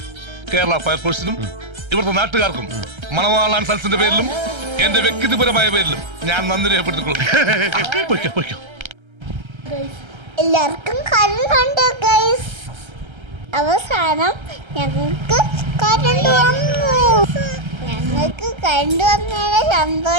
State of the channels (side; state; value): left; late; 1.3 ms